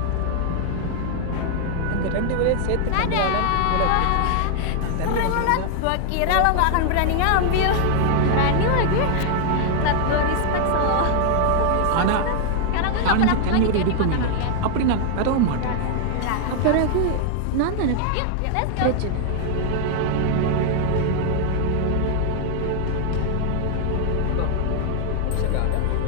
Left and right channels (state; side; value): different; both; correlation 0.00